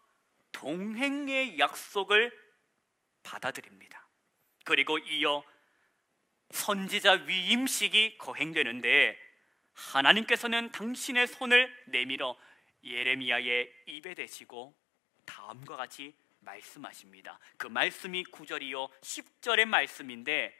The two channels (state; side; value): drops out; right; at 14.0 s